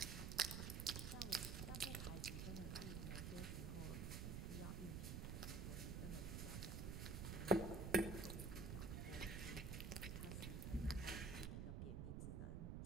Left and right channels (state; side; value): noise; right; rumble, 2 dB below the sound